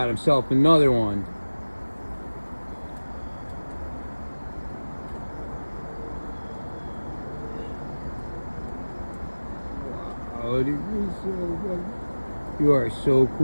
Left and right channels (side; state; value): both; inverted; correlation -1.00